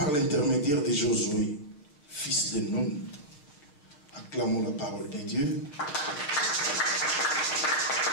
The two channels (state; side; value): late; right; 6.7 ms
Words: l'intermédiaire de Josué, fils de Nun. Acclamons la parole de Dieu.